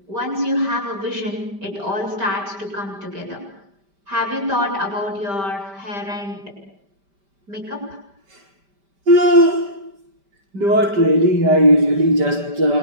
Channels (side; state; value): left; late; 5.1 ms